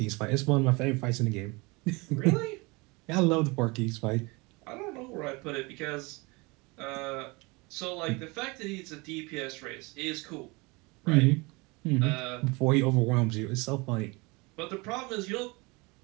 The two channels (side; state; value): left; quieter; 26.2 dB